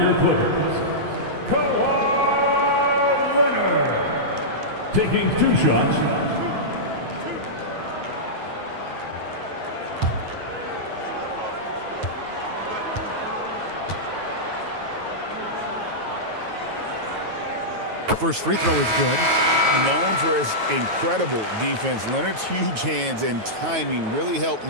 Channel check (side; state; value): left; late; 9.3 ms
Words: Clippers, Kawhi Leonard. Taking 2 shots. First free throw is good. Known for his incredible defense, Leonard's huge hands and timing really helped